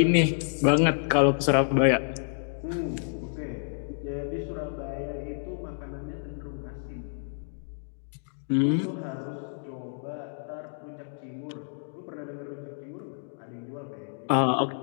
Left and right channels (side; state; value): right; silent; digital silence